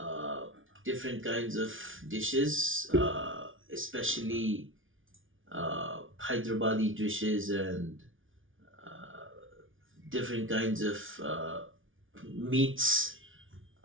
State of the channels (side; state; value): left; late; 0.57 ms